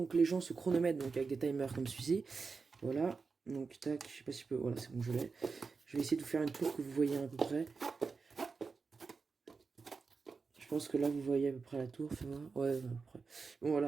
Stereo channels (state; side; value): quieter; left; 4.7 dB